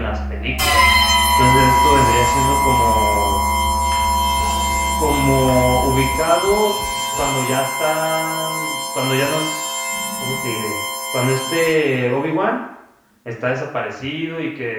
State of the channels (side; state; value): both; identical; correlation 1.00